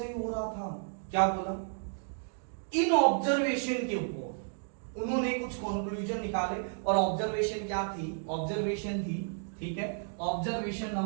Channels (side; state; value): left; silent; digital silence